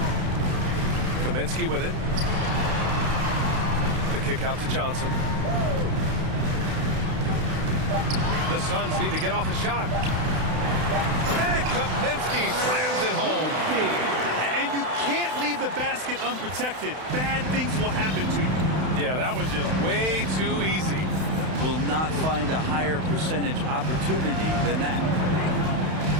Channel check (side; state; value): left; late; 31 ms